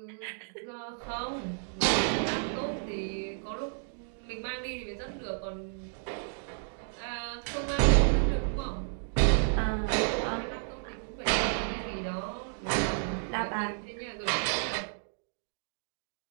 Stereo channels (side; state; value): left; silent; digital silence